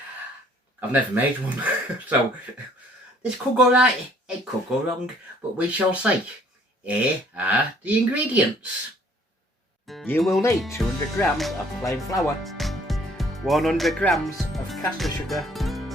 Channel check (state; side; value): normal; both; correlation 0.59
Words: I've never made one, so this could go right, it could go wrong, but we shall see. Here are the ingredients. You will need 200 grams of plain flour, 100 grams of caster sugar,